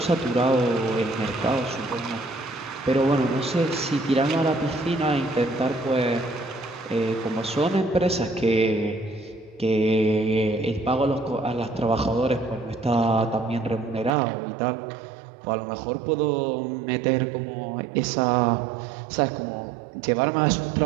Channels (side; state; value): left; drops out; at 14.1 s